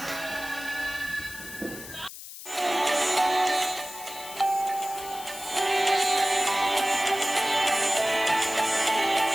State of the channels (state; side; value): noise; left; hiss, 13 dB below the sound